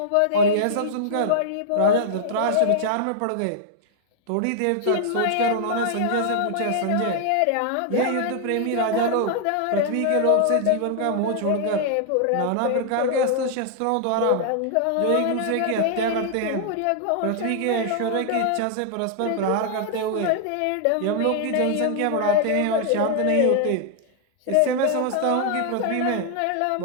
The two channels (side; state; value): both; different; correlation -0.01